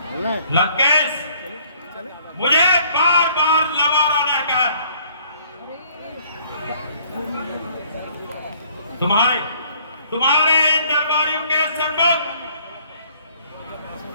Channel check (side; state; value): both; inverted; correlation -0.60